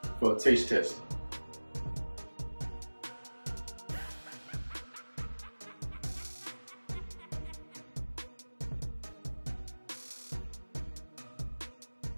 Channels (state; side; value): inverted; both; correlation -1.00